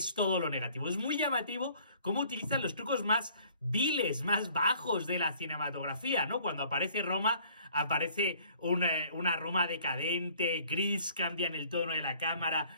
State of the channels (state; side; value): inverted; both; correlation -0.56